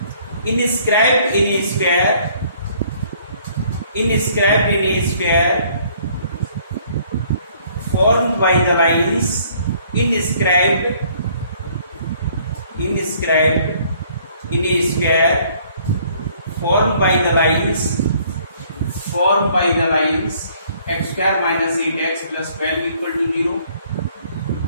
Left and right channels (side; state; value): both; inverted; correlation -0.60